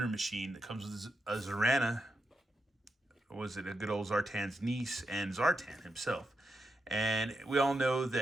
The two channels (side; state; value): both; normal; correlation 0.85